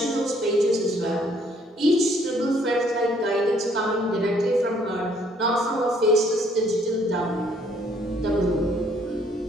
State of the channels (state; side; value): normal; both; correlation 0.64